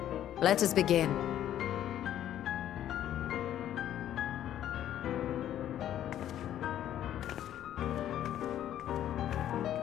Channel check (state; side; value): quieter; right; 11.4 dB